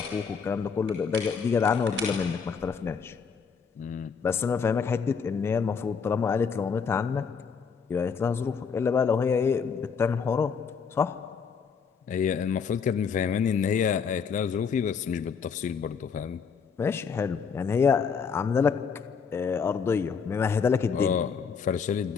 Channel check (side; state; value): right; quieter; 6.1 dB